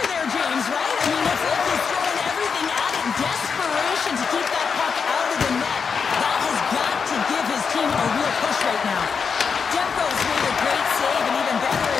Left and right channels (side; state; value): right; quieter; 5.9 dB